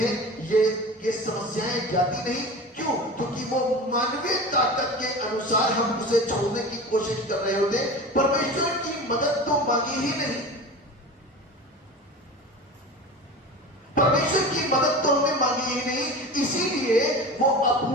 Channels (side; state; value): both; normal; correlation 0.33